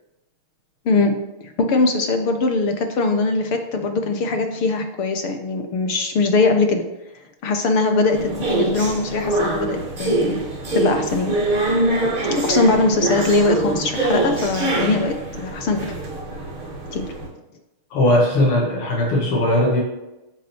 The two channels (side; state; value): right; late; 6.6 ms